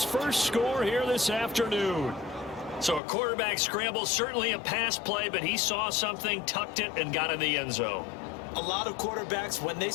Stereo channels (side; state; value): right; drops out; at 3.0 s